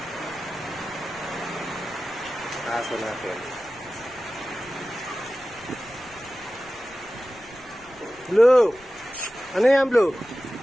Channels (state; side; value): noise; left; rumble, 25 dB below the sound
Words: aso natin. Blue! Ano yan, Blue?